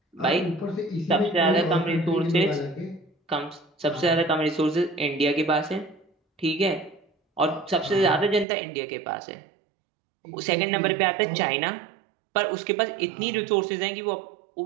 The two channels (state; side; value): drops out; left; at 8.5 s